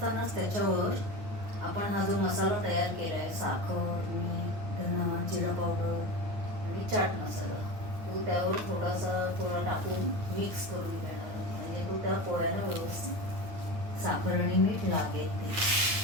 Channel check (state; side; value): late; left; 9.5 ms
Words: त्याच्यावर आपण हा जो मसाला तयार केला आहे, साखर, मीठ, धना, जिरा पावडर आणि चाट मसाला, तो त्यावर थोडा टाकून मिक्स करून घेणार आहोत. म्हणजे तो त्या पोह्याला व्यवस्थित साखर आणि मीठ लागेल ते.